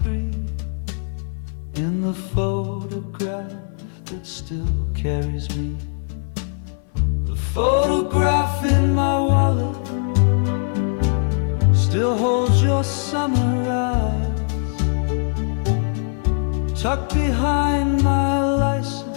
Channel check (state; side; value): silent; right; 61 dB below the other